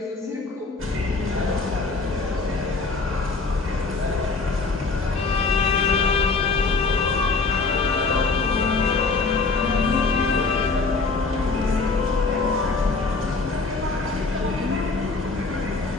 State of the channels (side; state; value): right; quieter; 4.0 dB